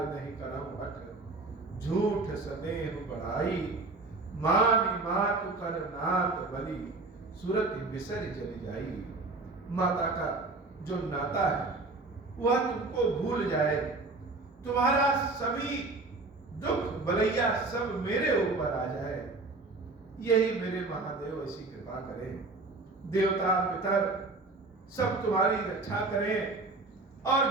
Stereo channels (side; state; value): left; quieter; 3.4 dB